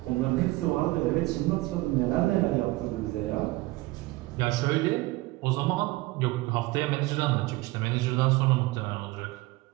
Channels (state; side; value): quieter; left; 20.6 dB